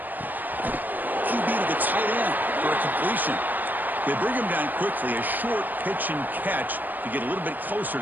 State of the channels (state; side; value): late; left; 0.087 ms